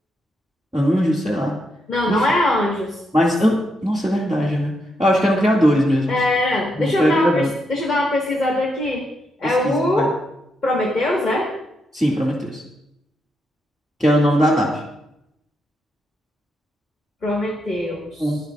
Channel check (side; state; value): both; normal; correlation 0.81